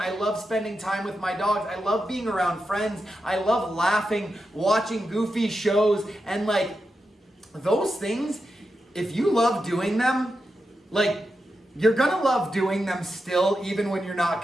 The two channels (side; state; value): both; normal; correlation 0.88